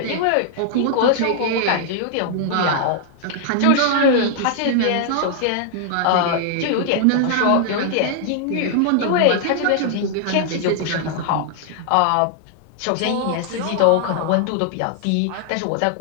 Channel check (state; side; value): different; both; correlation -0.01